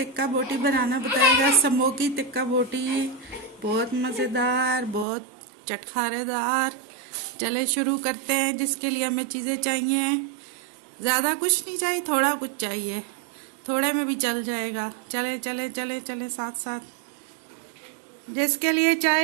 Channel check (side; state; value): left; drops out; at 5.1 s